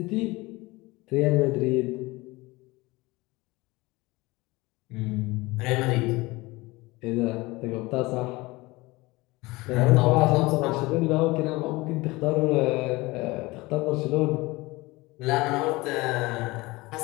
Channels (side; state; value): right; quieter; 21.9 dB